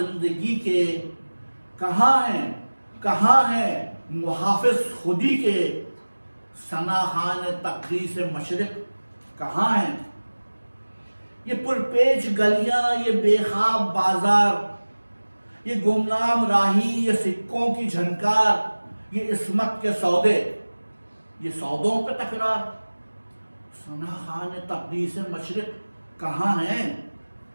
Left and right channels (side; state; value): both; inverted; correlation -1.00